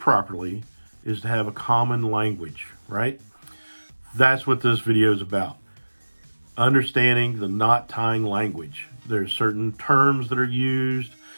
properly is to have a common language, right? That's what this video is about. Understanding the knot tying language. There's certain terms that are used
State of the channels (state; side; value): inverted; both; correlation -1.00